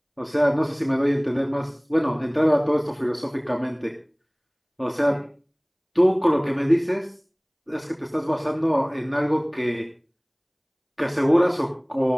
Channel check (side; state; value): both; identical; correlation 1.00